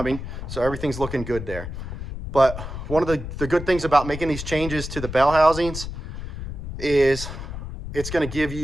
So everything's looking good there. But one of the good things about making these changes to the bell housings is it's going to give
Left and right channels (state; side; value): noise; left; rumble, 8 dB below the sound